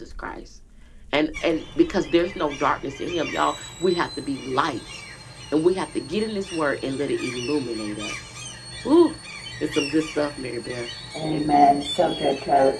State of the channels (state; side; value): identical; both; correlation 1.00